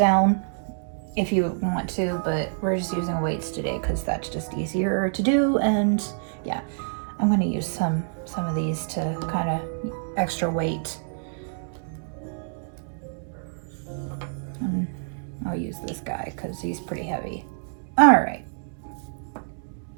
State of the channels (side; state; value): left; silent; digital silence